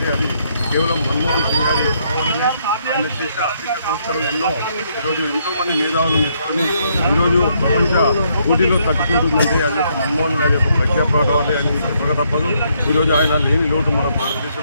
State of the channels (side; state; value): both; inverted; correlation -0.73